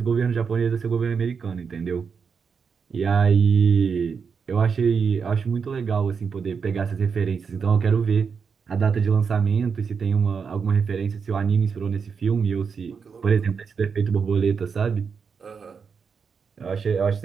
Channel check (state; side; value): quieter; left; 5.9 dB